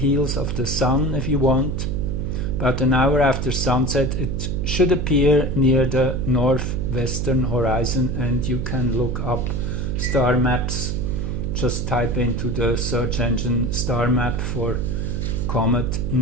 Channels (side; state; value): right; noise; hum, 1 dB below the sound